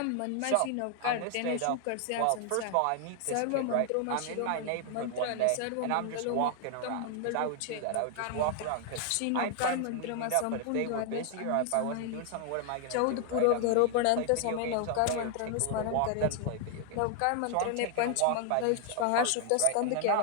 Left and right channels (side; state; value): both; different; correlation 0.00